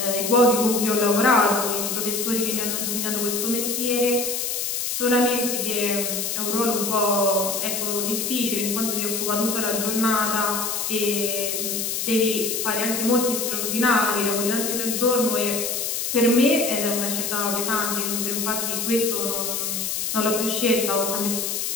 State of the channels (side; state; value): left; noise; hiss, 1 dB below the sound